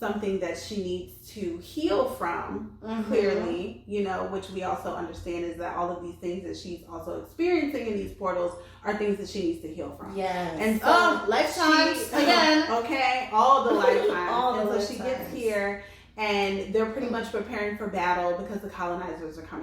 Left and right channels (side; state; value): both; identical; correlation 1.00